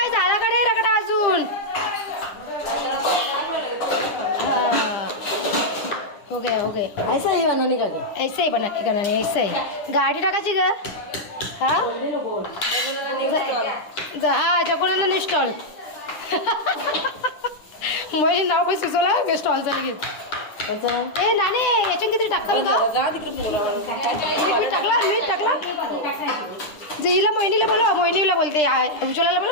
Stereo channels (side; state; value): right; late; 10 ms